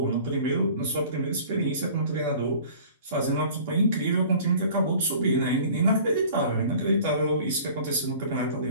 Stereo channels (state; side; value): inverted; both; correlation -0.47